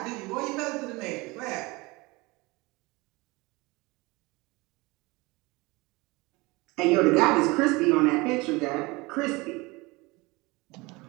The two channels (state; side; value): quieter; left; 23.8 dB